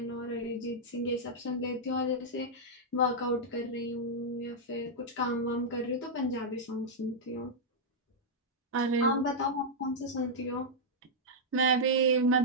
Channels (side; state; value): both; normal; correlation -0.06